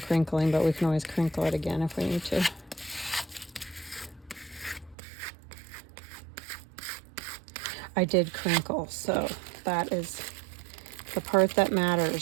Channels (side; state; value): left; drops out; at 5.0 s